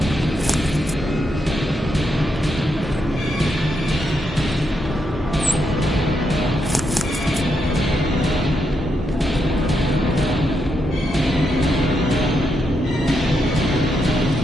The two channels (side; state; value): both; normal; correlation 0.82